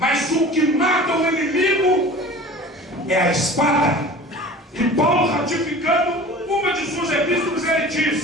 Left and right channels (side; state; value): both; normal; correlation 0.41